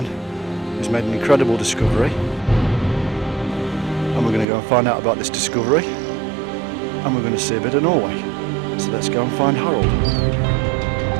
who's made an incredible discovery, and we're going to go and find out about this discovery and we're going to see a bit of Norway. So let's go and find Harold.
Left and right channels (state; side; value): drops out; left; at 4.5 s